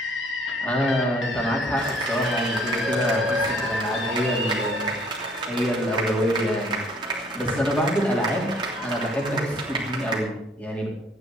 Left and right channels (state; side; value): normal; both; correlation 0.59